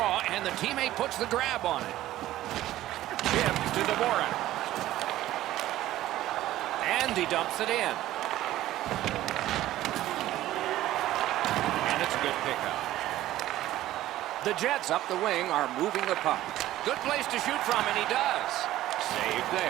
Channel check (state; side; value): quieter; left; 14.6 dB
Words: and the teammate puts the grab on it. Chip to Dvorak. And he dumps it in. And it's a good pickup. The Jets up the wing are moving the puck. Good place to shoot from, and he does. Save